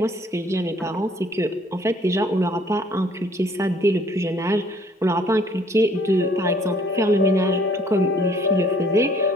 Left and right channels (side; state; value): both; normal; correlation 0.59